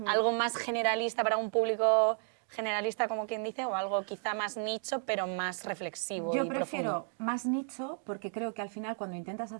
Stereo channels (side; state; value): left; silent; 56 dB below the other